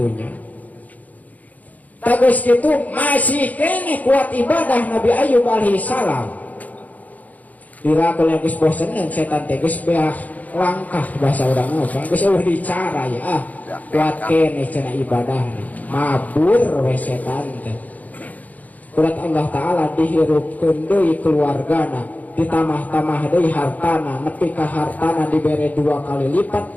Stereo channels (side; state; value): right; late; 0.078 ms